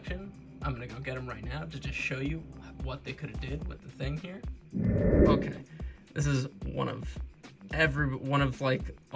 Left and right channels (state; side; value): identical; both; correlation 1.00